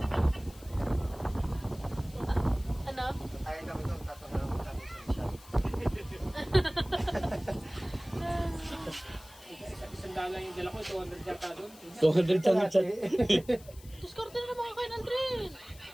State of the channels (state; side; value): noise; left; hiss, 22 dB below the sound